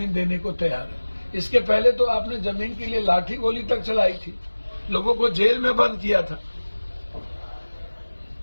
देने को तैयार हैं। इसके पहले तो आपने जमीन के लिए लाठी गोली तक चलाई थी, लोगों को जेल में बंद किया था।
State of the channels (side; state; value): both; inverted; correlation -1.00